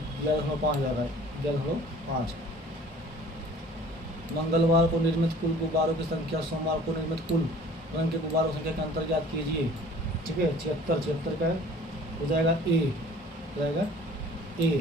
11.5 जाएगा 11.5। मंगलवार को निर्मित कुल गुब्बारों की संख्या सोमवार को निर्मित कुल रंग के गुब्बारों की संख्या का अंतर ज्ञात कीजिए, ठीक है। 76 का हो जाएगा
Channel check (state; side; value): normal; both; correlation 0.50